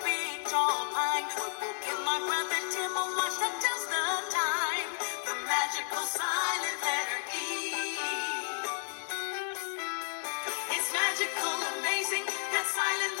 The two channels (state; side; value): silent; right; digital silence